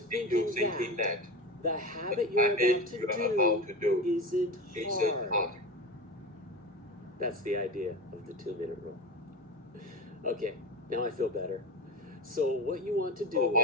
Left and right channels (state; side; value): normal; both; correlation 0.25